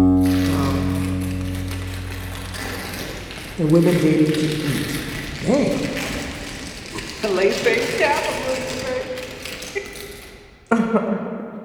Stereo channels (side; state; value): both; identical; correlation 1.00